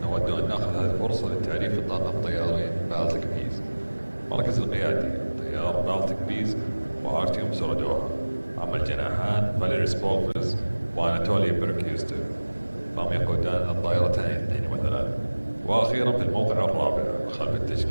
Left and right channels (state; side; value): inverted; both; correlation -1.00